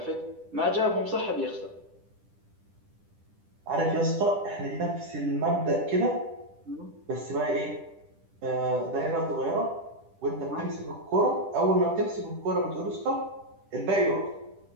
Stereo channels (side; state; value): left; late; 10 ms